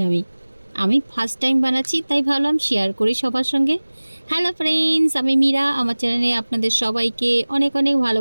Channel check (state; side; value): inverted; both; correlation -1.00